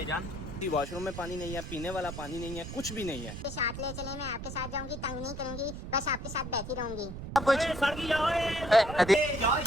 वॉशरूम में पानी नहीं है, पीने वाला पानी नहीं है, कुछ भी नहीं है। साथ ले चले, मैं आपके साथ जाऊंगी, तंग नहीं करूंगी, बस आपके साथ बैठी रहूंगी।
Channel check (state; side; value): noise; right; rumble, 9 dB below the sound